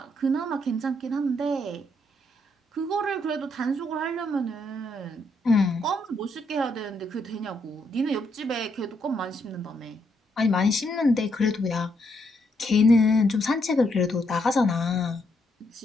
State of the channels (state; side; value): normal; both; correlation 0.76